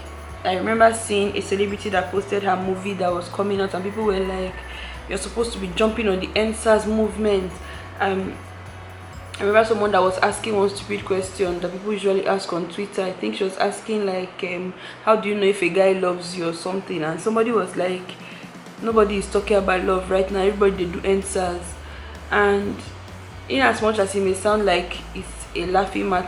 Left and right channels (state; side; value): identical; both; correlation 1.00